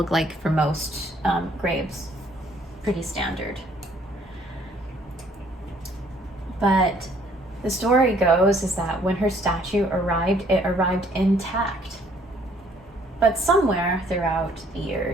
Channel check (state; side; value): normal; both; correlation 0.62